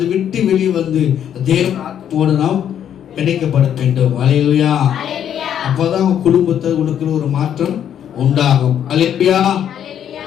விட்டு வெளியே வந்து தேவன் ஆத்மாவோடு நாம் பிணைக்கப்பட வேண்டும். அல்லேலூயா. அப்பதான் உங்க குடும்பத்தை உனக்கு ஒரு மாற்றம் உண்டாகும். அல்லேலூயா.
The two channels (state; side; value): quieter; right; 9.6 dB